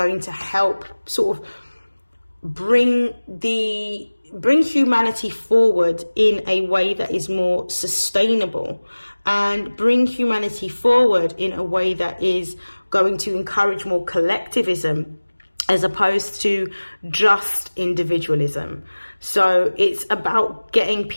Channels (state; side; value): inverted; both; correlation -1.00